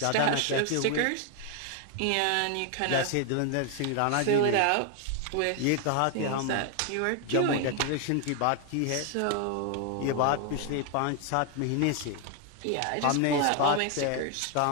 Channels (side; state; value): both; different; correlation 0.00